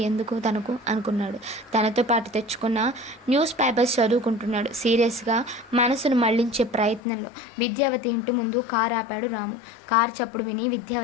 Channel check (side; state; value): right; drops out; at 7.0 s